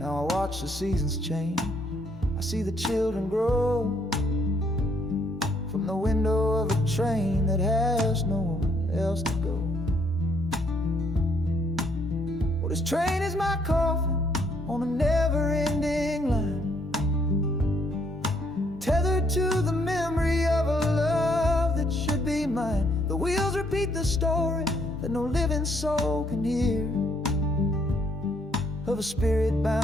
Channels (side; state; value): both; normal; correlation 0.69